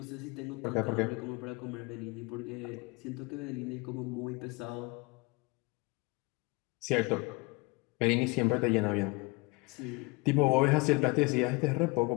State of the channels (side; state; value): right; quieter; 25.9 dB